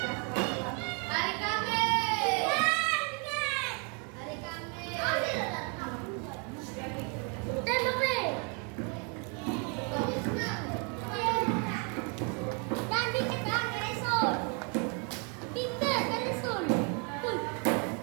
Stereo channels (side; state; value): left; quieter; 36.3 dB